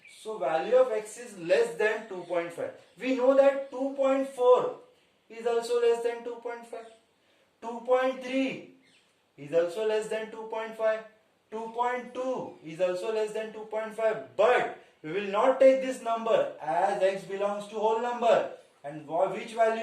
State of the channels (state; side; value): identical; both; correlation 1.00